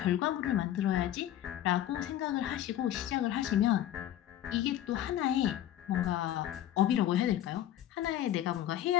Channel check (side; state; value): right; quieter; 12.1 dB